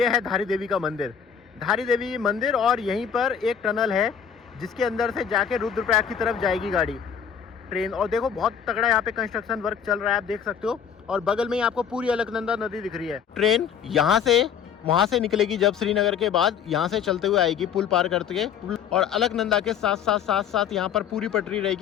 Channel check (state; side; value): quieter; right; 7.8 dB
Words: है धारी देवी का मंदिर, धारी देवी मंदिर। और यहीं पर एक टनल है जिसके अंदर से जाके रुद्रप्रयाग की तरफ जाएगी गाड़ी, ट्रेन। और देखो बहुत तगड़ा यहाँ पे कंस्ट्रक्शन वर्क चल रहा है, आप देख सकते हो। और बगल में ही आपको पूरी अलकनंदा नदी दिख रही है। ट्रेन यहाँ से वहाँ से निकलेगी जब श्रीनगर के बाद, यहाँ से चलते हुए आएगी पुल पार करके, और अलकनंदा के साथ यहाँ पर पूरी पटरी